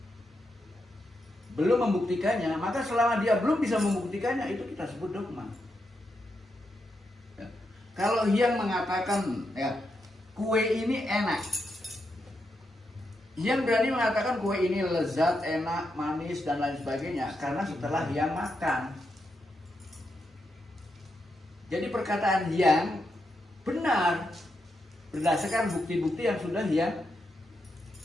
belum membuktikannya, maka selama dia belum bisa membuktikannya, itu kita sebut dogma. Ya. Kalau yang mengatakan ya kue ini enak, yang berani mengatakan kue ini lezat, enak, manis dan lain sebagainya karena setelah yang makan. Jadi perkataan yang benar berdasarkan bukti-bukti yang sudah dia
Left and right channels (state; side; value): normal; both; correlation 0.84